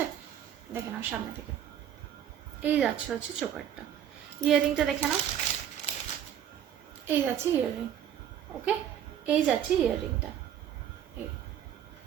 দেখে নাও সামনে থেকে, এই যাচ্ছে হচ্ছে চোকারটা। ইয়াররিংটা দেখে নাও, এই যাচ্ছে ইয়াররিং। ওকে, এই যাচ্ছে ইয়াররিংটা, এই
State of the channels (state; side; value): quieter; left; 9.9 dB